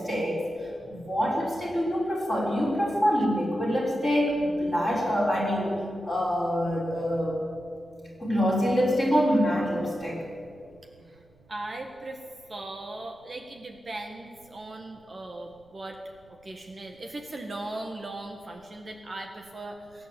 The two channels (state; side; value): noise; right; rumble, 30 dB below the sound